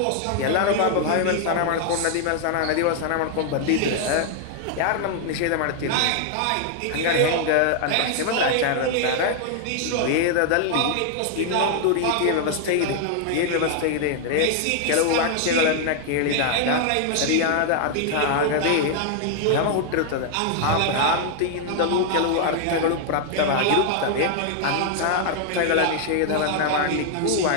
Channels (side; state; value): both; different; correlation 0.00